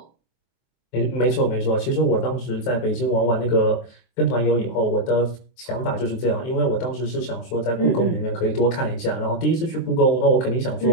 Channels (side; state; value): right; late; 23 ms